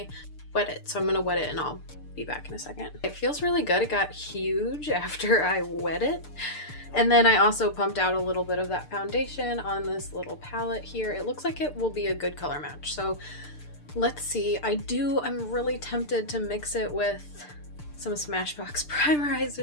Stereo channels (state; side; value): late; right; 6.7 ms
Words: wet it. So I'm gonna wet it and I'll be back in a second. It feels really good. It got huge after I wet it. And then I also pumped out a little bit of that foundation on this little palette here. It looks like it will be a good color match. So let's see. I'm really tempted to mix it with some Smashbox